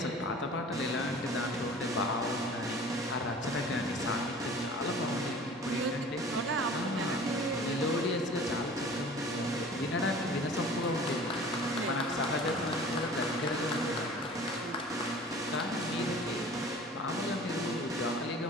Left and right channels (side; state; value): both; normal; correlation 0.44